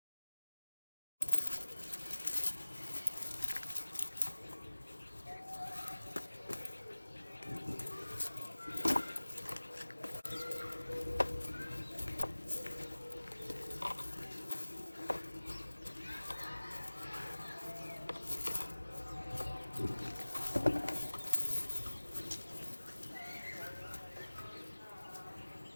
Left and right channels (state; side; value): inverted; both; correlation -1.00